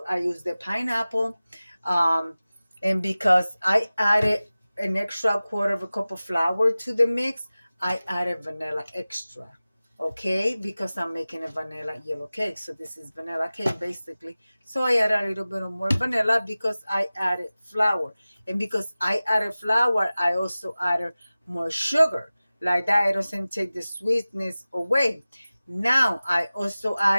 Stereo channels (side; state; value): both; inverted; correlation -0.97